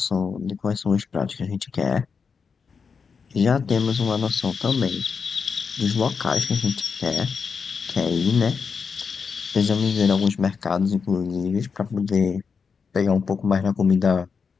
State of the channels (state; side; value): quieter; right; 5.7 dB